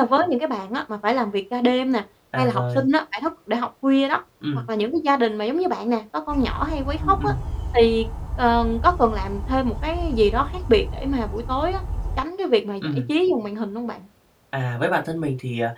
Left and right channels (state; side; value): identical; both; correlation 1.00